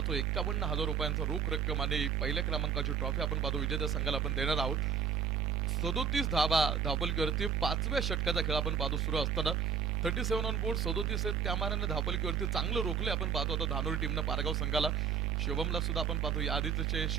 51,000 रुपयांचा रोख रक्कम आणि पहिल्या क्रमांकाची ट्रॉफी आपण पाहतो विजेत्या संघाला आपण देणार आहोत. 37 धावा धावपलकीवरती 5व्या षटकाचा खेळ आपण पाहतो सुरू असताना 37 ऑन बोर्ड 37 आहेत. त्या मानाने धावपलकीवरती चांगलं रोखले आपण पाहतो आता धानोरी टीमनं पारगाव संघाला. शुभमला सुद्धा आपण पाहतो या आधीचे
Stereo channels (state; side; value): quieter; left; 6.8 dB